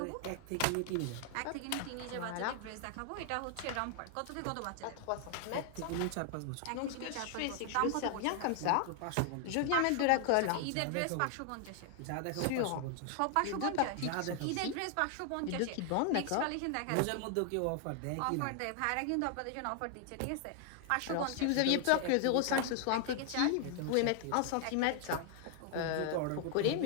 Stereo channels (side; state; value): both; different; correlation 0.00